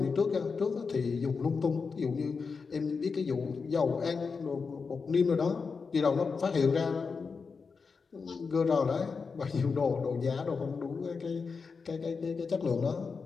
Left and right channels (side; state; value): right; quieter; 5.0 dB